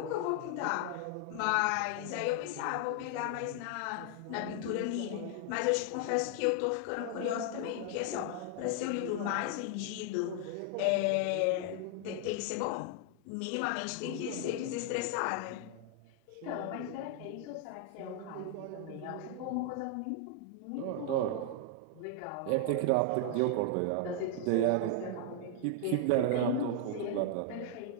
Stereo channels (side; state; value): both; different; correlation 0.00